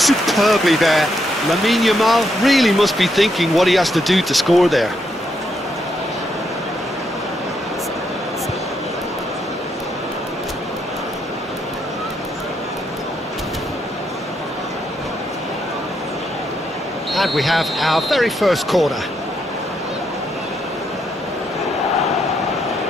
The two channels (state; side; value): normal; both; correlation 0.78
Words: there. Lamine Yamal really must be thinking what he has to do to score there. And we have our very first corner.